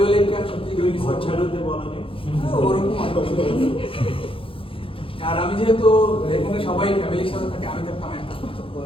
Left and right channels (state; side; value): late; right; 0.26 ms